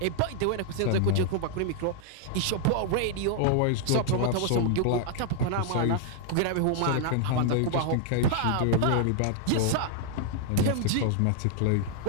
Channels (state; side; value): different; both; correlation 0.00